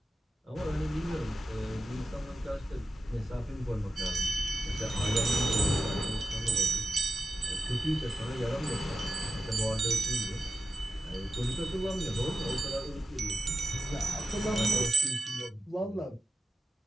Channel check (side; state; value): both; normal; correlation 0.91